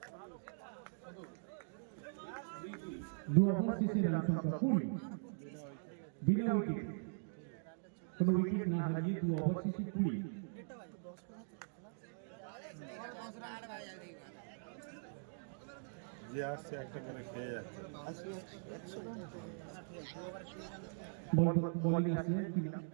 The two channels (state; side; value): silent; left; digital silence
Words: 2 ওভার শেষে রান সংখ্যা 20, বিনা উইকেট, কোনো উইকেট না হারিয়ে 2 ওভার শেষে 20। যে আসছে একটা করে খেয়ে যাচ্ছে। বোলিং আসছে কিনা